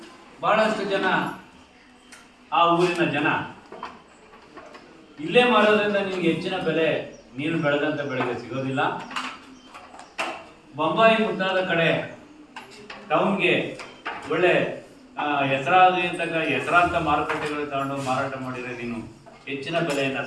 ಬಹಳಷ್ಟು ಜನ, ಆ ಊರಿನ ಜನ, ಇಲ್ಲೇ ಮಾರೋದ್ರಿಂದ ನಿಮ್ಗೆ ಹೆಚ್ಚಿನ ಬೆಲೆ ನೀನು ಬೆಳೆದಂಥ ಬೆಳೆಗೆ ಸಿಗೋದಿಲ್ಲ, ಬೊಂಬಾಯಿ ಮುಂತಾದ ಕಡೆ ಟೌನ್ಗೆ ಒಳ್ಳೆ ಹೆಸರಾಂತ ಮಾರುಕಟ್ಟೆಗಳು ತಗೊಂಡು ಮಾರಾಟ ಮಾಡಿದರೆ ನೀನು ಹೆಚ್ಚಿನ ಬೆಲೆಯನ್ನು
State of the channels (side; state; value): both; identical; correlation 1.00